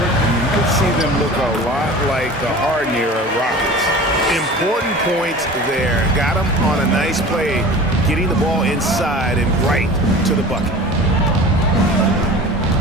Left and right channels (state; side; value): normal; both; correlation 0.38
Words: you could see them look a lot like the Harden-era Rockets. Important points there. Got him on a nice play, getting the ball inside and right to the bucket.